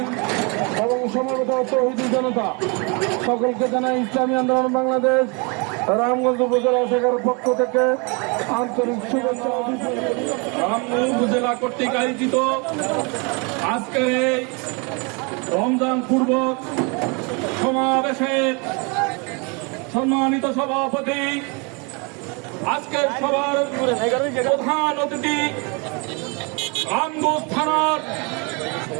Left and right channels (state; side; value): quieter; left; 31.9 dB